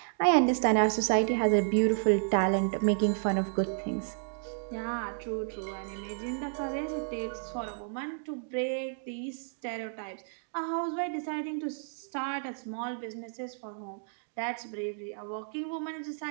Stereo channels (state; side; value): silent; left; digital silence